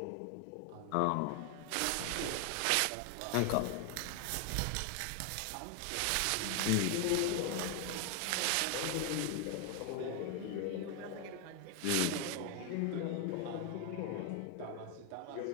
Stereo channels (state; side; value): different; both; correlation 0.01